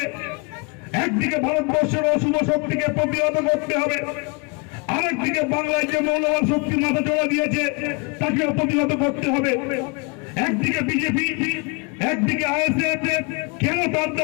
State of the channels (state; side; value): quieter; right; 31.5 dB